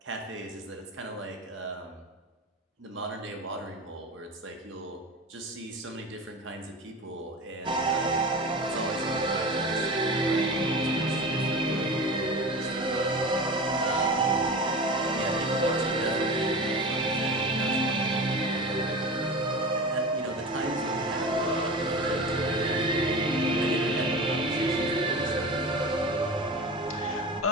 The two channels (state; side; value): normal; both; correlation 0.31